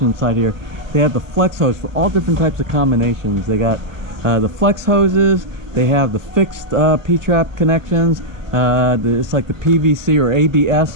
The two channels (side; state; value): left; late; 1.1 ms